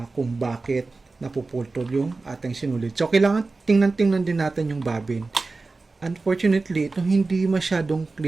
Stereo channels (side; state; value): left; quieter; 3.7 dB